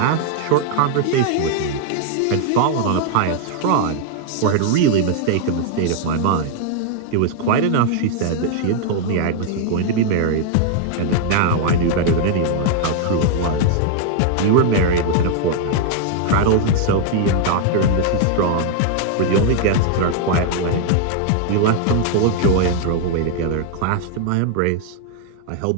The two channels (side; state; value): both; different; correlation 0.00